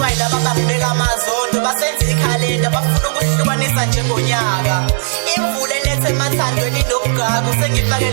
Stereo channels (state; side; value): silent; left; digital silence